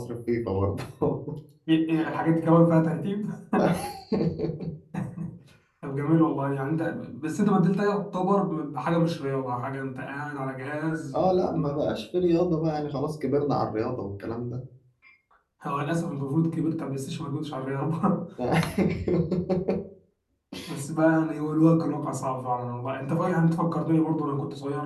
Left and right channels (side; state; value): both; identical; correlation 1.00